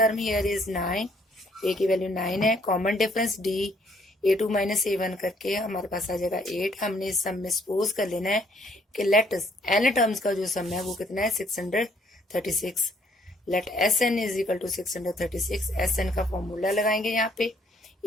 here is 9, a की वैल्यू 9 है. Common difference d a2 minus a1 करके हमारे पास आ जाएगा 8. हमने इस सम में सपोज कर लेना है कि लेट n टर्म्स का जो सम है वो कितना है 636. Let S N is equal to 636. S N का फॉर्मूला लगाएंगे यहाँ पे.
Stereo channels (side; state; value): both; normal; correlation 0.65